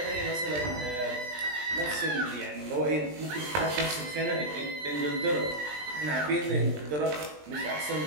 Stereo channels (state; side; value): late; left; 20 ms